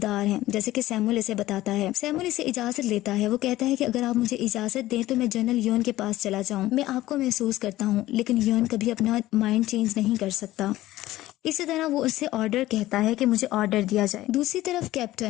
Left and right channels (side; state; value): right; quieter; 16.0 dB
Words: हैं, जैसे कि सैमुअल इसे बताता है। सैमुअल इसे इजाजत लेता है। वो कहता है कि अगर आप मुझे इजाजत दें तो मैं जनरल योन के पास चला जाऊं। मैं आपको महसूस करता हूँ, लेकिन योन कभी अपना माइंड चेंज नहीं कर सकता। इसी तरह वो उससे ऑर्डर कहता है कि मुझे ऑर्डर दिया जाए। दूसरी तरफ